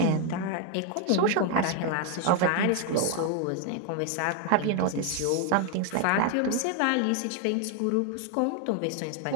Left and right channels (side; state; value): both; different; correlation 0.01